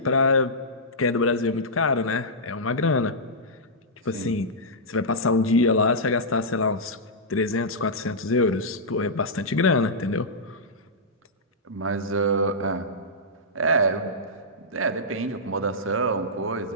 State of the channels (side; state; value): both; normal; correlation -0.12